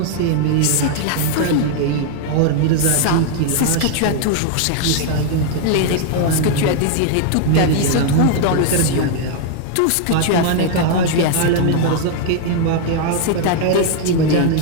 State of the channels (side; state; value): both; different; correlation 0.00